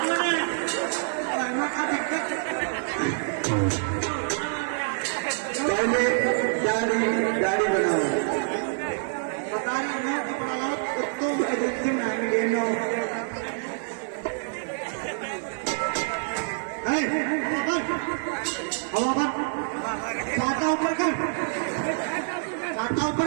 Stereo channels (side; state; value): left; silent; digital silence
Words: पहले दाढ़ी बनाओ बता रही मैं कपड़ा लाओ कुत्तों एजेंसी में आएंगे नो हवा पर छाता ऊपर कर छाता